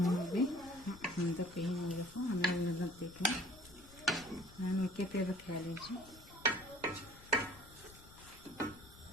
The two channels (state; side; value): noise; left; rumble, 20 dB below the sound